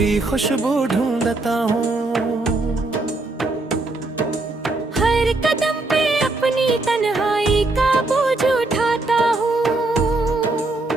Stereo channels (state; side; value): quieter; left; 3.0 dB